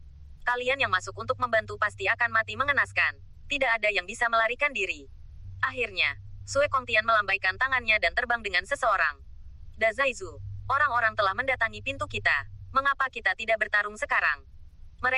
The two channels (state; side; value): identical; both; correlation 1.00